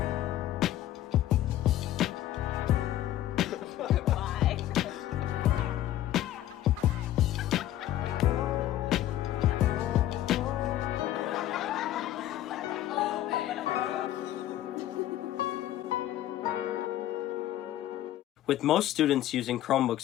With most students using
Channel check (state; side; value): quieter; right; 13.1 dB